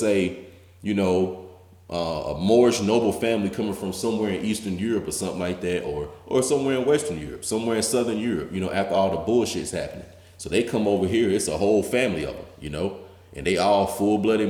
a Moorish noble family coming from somewhere in Eastern Europe or something like that, or somewhere in Western Europe, somewhere in Southern Europe, after all the bullshit's happening. So they come over here, it's a whole family of them, and they all full-blooded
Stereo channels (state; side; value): identical; both; correlation 1.00